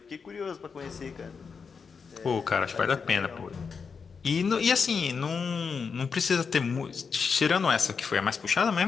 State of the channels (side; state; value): right; quieter; 5.6 dB